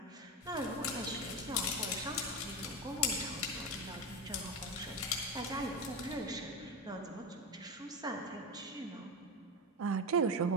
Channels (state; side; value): normal; both; correlation 0.18